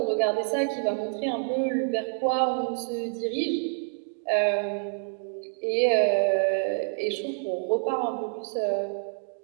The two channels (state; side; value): silent; left; digital silence